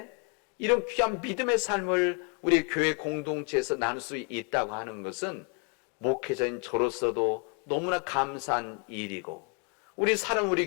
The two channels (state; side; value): quieter; right; 34.7 dB